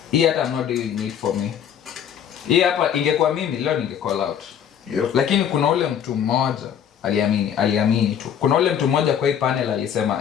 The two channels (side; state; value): right; quieter; 8.9 dB